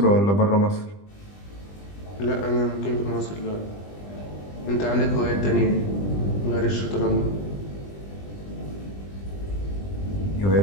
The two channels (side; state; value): right; late; 20 ms